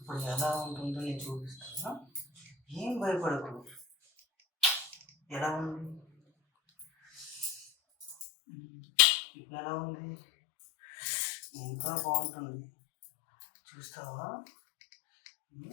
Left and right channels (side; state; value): right; drops out; at 8.2 s